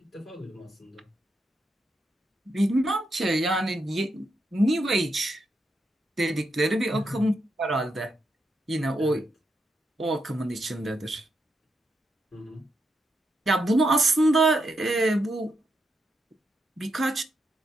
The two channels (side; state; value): both; normal; correlation 0.82